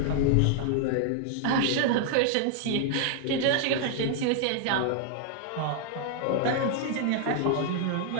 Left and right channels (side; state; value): both; different; correlation 0.00